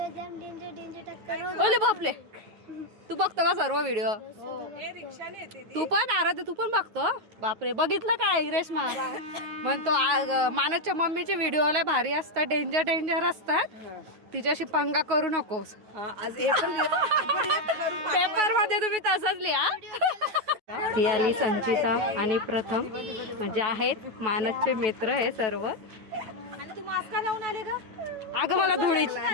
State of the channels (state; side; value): late; left; 9.3 ms